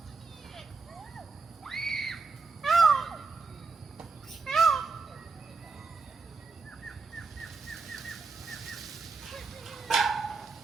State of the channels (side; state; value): left; quieter; 4.5 dB